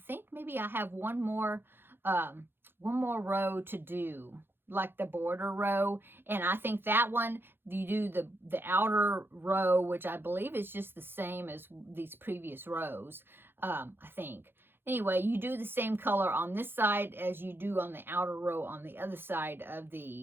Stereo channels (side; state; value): left; late; 0.10 ms